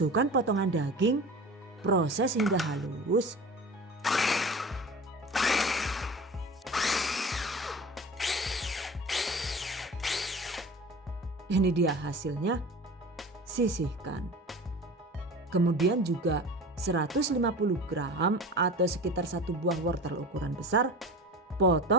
potongan daging, proses hingga halus. Ini dia hasilnya, sisihkan. Kemudian juga 150 gram atau sekitar 1 buah wortel ukuran besar.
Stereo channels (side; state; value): both; normal; correlation 0.36